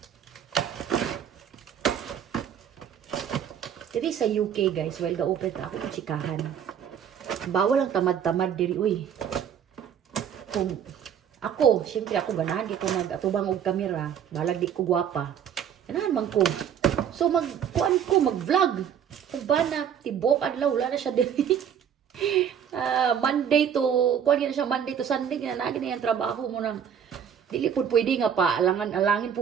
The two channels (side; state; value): left; quieter; 8.5 dB